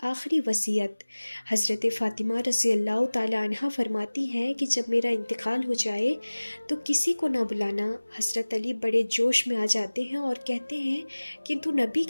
آخری وصیت حضرت فاطمہ رضی اللہ تعالی عنہ فرماتی ہیں کہ جب میرا انتقال ہو جائے تو کسی کو نہ بلانا۔ حضرت علی بڑے جوش میں آ جاتے ہیں اور کہتے ہیں کہ تو نبی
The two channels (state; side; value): inverted; both; correlation -1.00